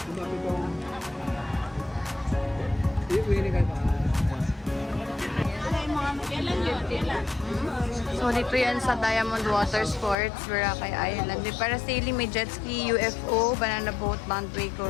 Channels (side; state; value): right; drops out; at 10.2 s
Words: So, dito yan sa Diamond Water Sports, Boracay Island. May parasailing, may jet ski, UFO, banana boat,